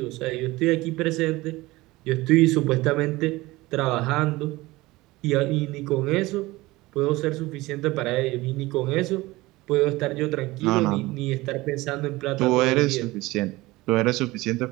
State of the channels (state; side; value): quieter; left; 20.0 dB